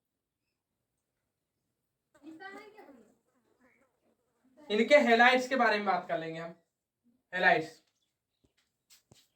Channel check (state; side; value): identical; both; correlation 1.00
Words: इनके हेलाइड्स के बारे में बात कर लेंगे हम। हेलाइड्स,